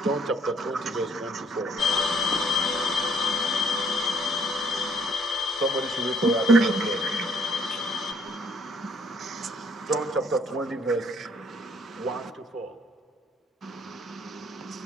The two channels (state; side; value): normal; both; correlation 0.64